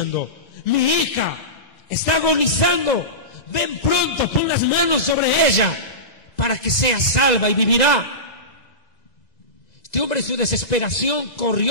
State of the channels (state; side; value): late; right; 2.0 ms